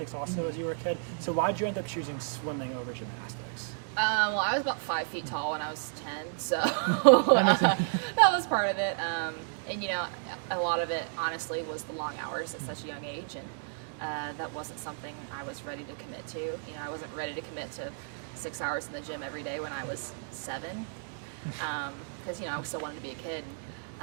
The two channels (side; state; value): left; silent; digital silence